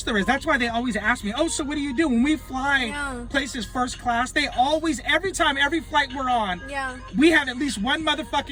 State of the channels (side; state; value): both; identical; correlation 1.00